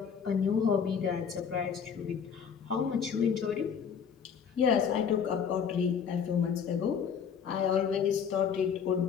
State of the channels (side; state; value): right; quieter; 7.1 dB